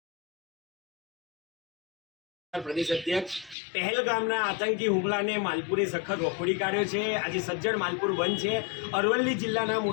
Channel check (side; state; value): right; drops out; at 3.6 s